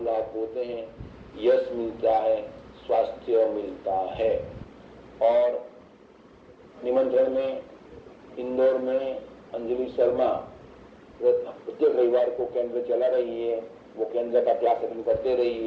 लाभ होते हैं, यश मिलता है, स्वास्थ्य मिलता है। और निमंत्रण में इंदौर में अंजलि शर्मा प्रत्येक रविवार को केंद्र चला रही है, वो केंद्र का क्लास अटेंड करते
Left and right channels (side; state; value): both; identical; correlation 1.00